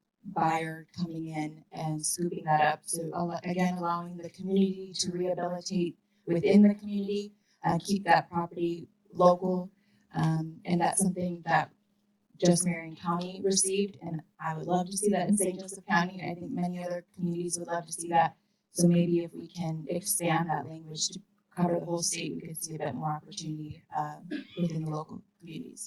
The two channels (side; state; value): both; identical; correlation 1.00